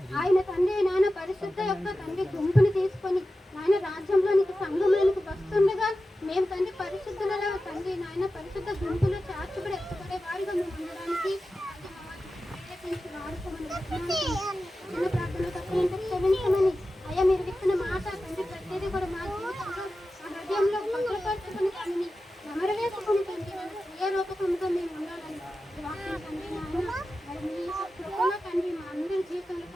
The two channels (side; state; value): both; normal; correlation 0.93